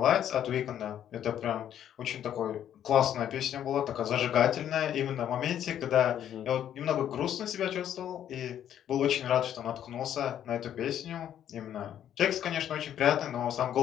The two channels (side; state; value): right; quieter; 10.3 dB